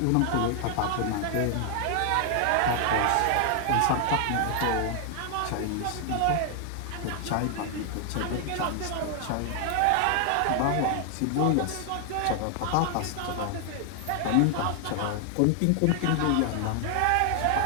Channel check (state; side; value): different; both; correlation 0.00